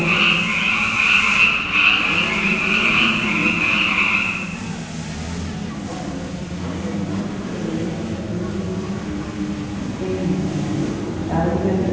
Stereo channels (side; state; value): both; identical; correlation 1.00